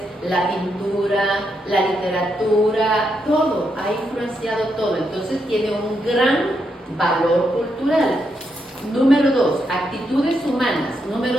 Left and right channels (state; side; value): normal; both; correlation 0.81